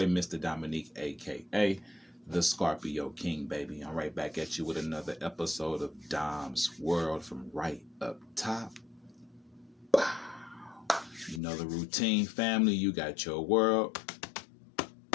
Mr. Dominique, aka the Scorpio King, baby. I'm right back at you with another episode of Dom's World from right up top. Bow. You know the routine, family. You got your world,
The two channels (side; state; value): right; drops out; at 11.4 s